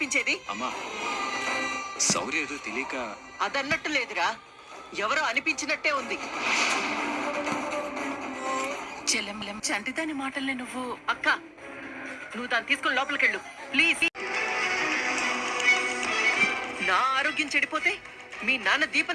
అమ్మా, శౌర్య ఏదో తెలియక. అదన్నట్టు లేదురా, ఎవరో అనిపించినట్టే ఉంది. చెల్లెం చంటిదాని మాటల్ని నువ్వు. అక్క, నువ్వు దాన్ని తీసుకుని లోపలికెళ్ళు ప్లీజ్. నా ఆరోగ్యం చెడిపోతే మీ నాన్న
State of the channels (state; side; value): identical; both; correlation 1.00